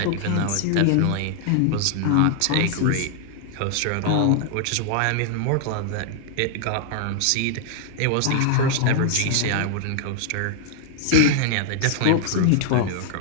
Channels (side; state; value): both; different; correlation 0.00